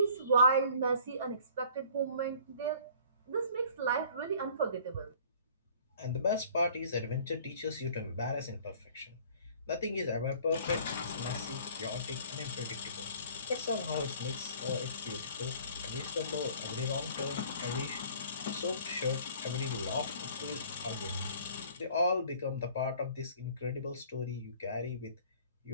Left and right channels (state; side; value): inverted; both; correlation -0.52